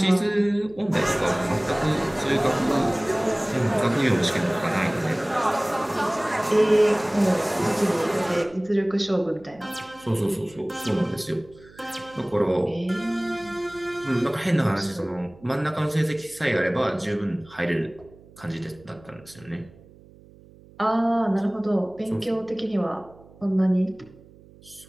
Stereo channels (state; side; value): noise; right; hum, 24 dB below the sound